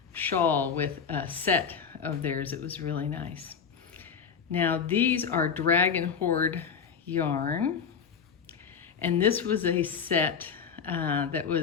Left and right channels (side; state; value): right; quieter; 6.5 dB